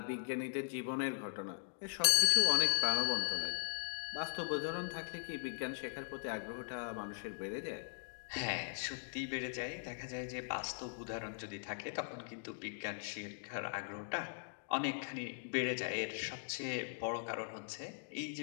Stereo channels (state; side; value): silent; right; digital silence